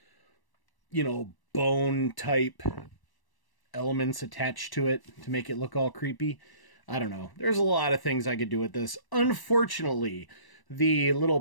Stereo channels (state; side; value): late; right; 1.1 ms